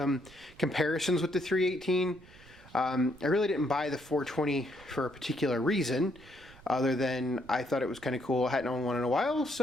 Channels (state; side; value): noise; right; rumble, 22 dB below the sound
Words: comparisons with the 318. I really didn't buy the 420 for a particular reason, other than I thought it was kind of cool. I hadn't owned one in a while,